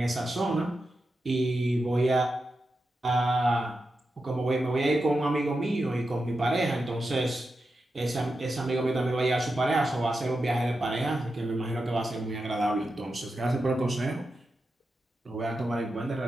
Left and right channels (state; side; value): normal; both; correlation 0.89